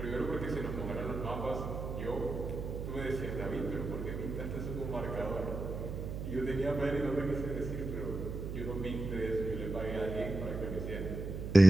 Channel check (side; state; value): right; noise; hum, 6 dB below the sound